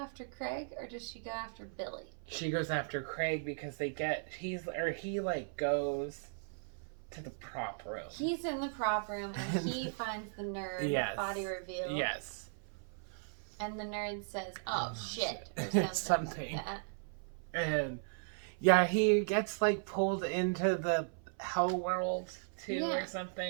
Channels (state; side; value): silent; left; 53 dB below the other